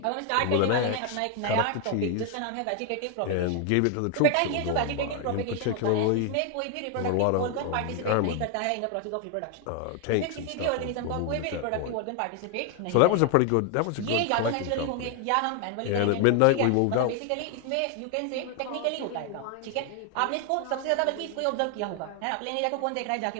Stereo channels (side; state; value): both; different; correlation 0.01